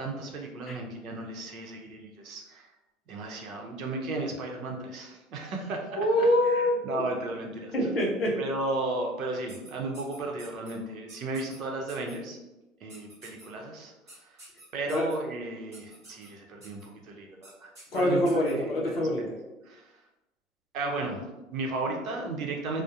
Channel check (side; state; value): both; normal; correlation 0.48